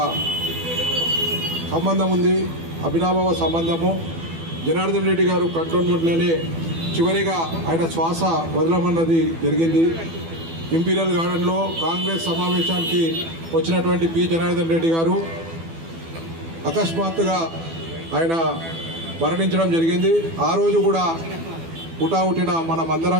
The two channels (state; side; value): late; left; 12 ms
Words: సంబంధం ఉంది, అభినాభావ సంబంధము. జనార్దన్ రెడ్డి గారు కంటోన్మెంట్లోనే చివరిగా ఆయన శ్వాస వదలమన్నది జరిగింది. ఇంపీరియల్ గార్డెన్లో కాంగ్రెస్ సమావేశానికి వచ్చినటువంటి పి జనార్దన్ రెడ్డి గారు అకస్మాత్తుగా ఆయన మరణించడం జరిగింది. ఆ రోజు కూడా పుటావుటిన మనమందరం